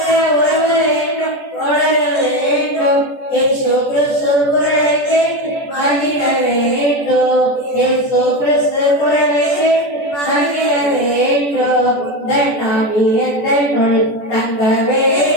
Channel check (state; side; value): late; right; 14 ms